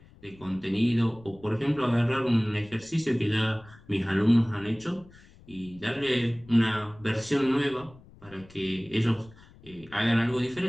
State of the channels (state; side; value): noise; left; rumble, 24 dB below the sound